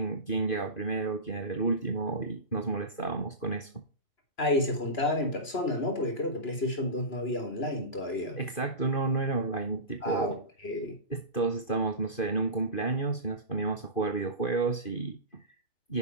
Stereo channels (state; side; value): late; right; 2.5 ms